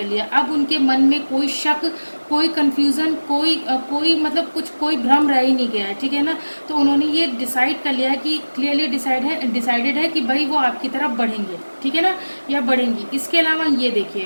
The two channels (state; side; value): inverted; both; correlation -1.00